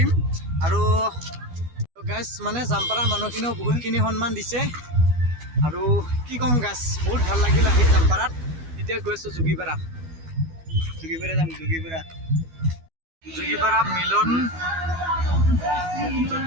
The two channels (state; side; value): late; left; 12 ms